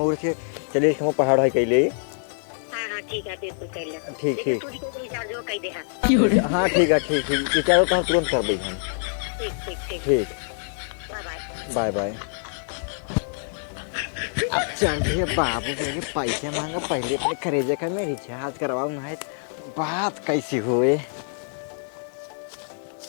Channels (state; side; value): silent; right; digital silence